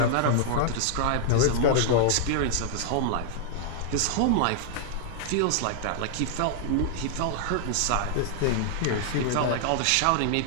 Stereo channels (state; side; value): different; both; correlation -0.01